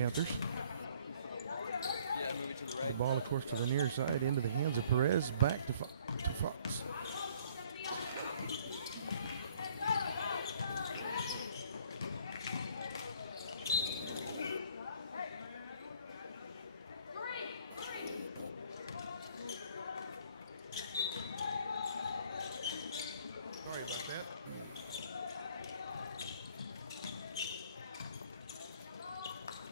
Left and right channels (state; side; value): inverted; both; correlation -0.59